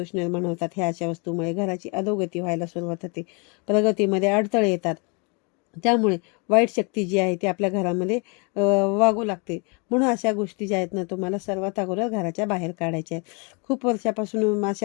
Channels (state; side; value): quieter; right; 33.2 dB